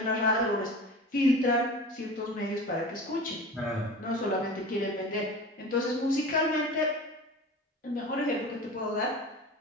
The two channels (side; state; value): both; normal; correlation 0.35